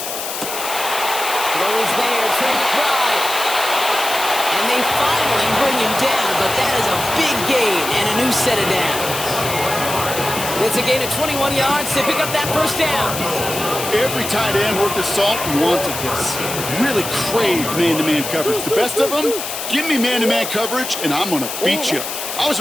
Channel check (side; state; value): left; noise; hiss, 6 dB below the sound